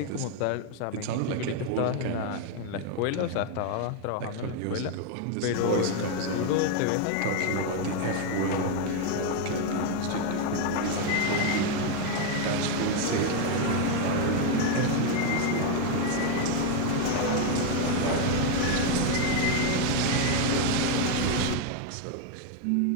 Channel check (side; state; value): both; different; correlation 0.02